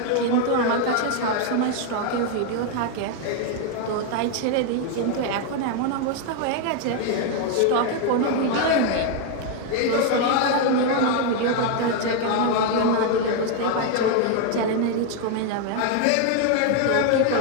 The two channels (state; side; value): different; both; correlation 0.01